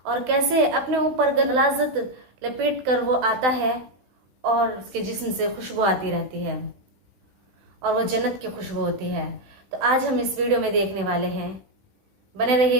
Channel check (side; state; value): left; late; 16 ms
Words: और कैसे अपने ऊपर गलाजत लपेट कर वो आता है और उसके जिस्म से खुशबू आती रहती है और वो जन्नत की खुशबू होती है। तो आज हम इस वीडियो में देखने वाले हैं, बने